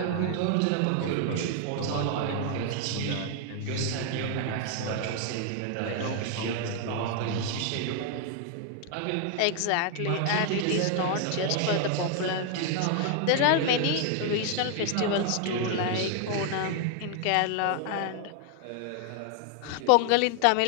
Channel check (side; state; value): both; different; correlation 0.00